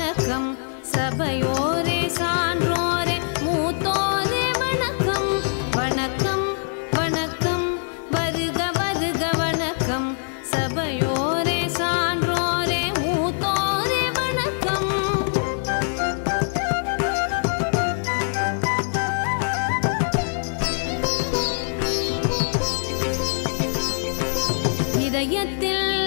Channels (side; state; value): right; silent; digital silence